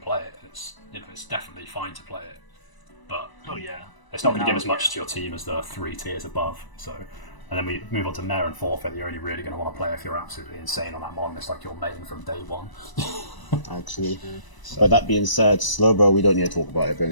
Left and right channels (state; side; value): late; right; 1.0 ms